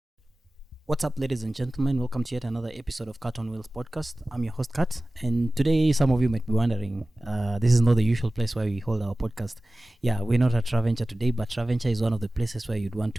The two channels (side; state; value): both; normal; correlation 0.97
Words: What's up, ladies and gentlemen? Welcome to yet another episode of Cat on Wheels podcast. I'm your host, Kat, and today some of you might be wondering, this is not the usual place where we hold our podcast. Yeah, we're not at Traventure today, but Traventure is one of the places where you'd want